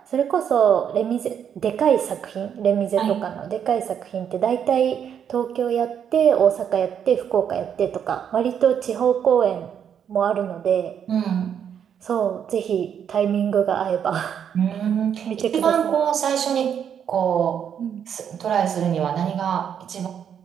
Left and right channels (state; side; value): quieter; left; 8.4 dB